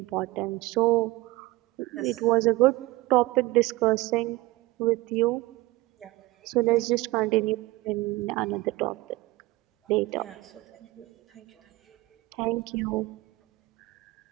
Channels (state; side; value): quieter; left; 19.7 dB